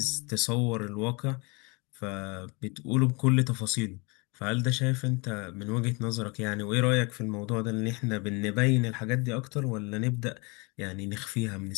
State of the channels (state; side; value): quieter; right; 29.1 dB